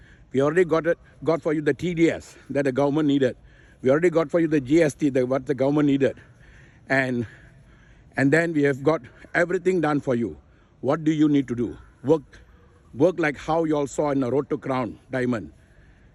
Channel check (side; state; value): both; identical; correlation 1.00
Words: We already got for you the TDS that the government needed. We already got for you the GST, what the government needed. And then we have got everything done for you. What do you need to do? Work like how you all saw in the Road to Crown diamond.